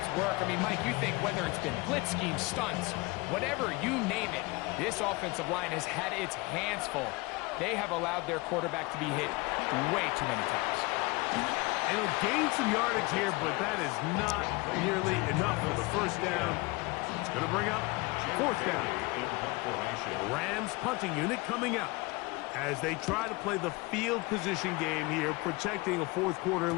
work. I mean, Mike, you think whether it's been blitz schemes, stunts, whatever, you name it, this offensive line has had its hands full. They have allowed their quarterback to be hit way too many times. And he'll gain some yardage here, but that is not nearly enough for the 1st down. It's going to bring up 4th down. The Rams punting unit coming out as they try to play the field position game here, protecting a 4th quarter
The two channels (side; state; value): right; quieter; 24.6 dB